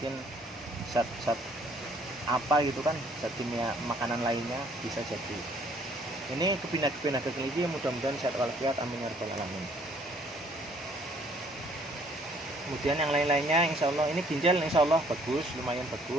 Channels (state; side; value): normal; both; correlation 0.62